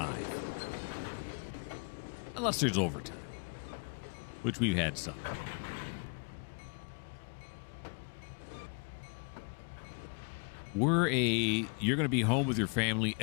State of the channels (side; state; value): right; quieter; 37.5 dB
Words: Unless there's overtime, which we've had some. You're going to be home with your family